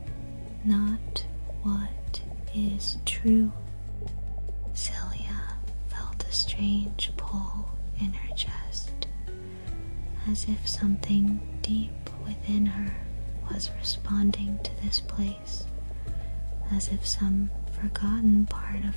not what is true. Celia felt a strange pull in her chest, as if something deep within her was responding to this place, as if some forgotten part of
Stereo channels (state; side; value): inverted; both; correlation -1.00